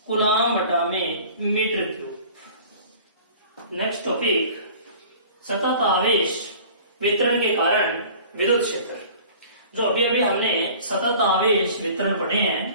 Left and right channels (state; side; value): inverted; both; correlation -0.46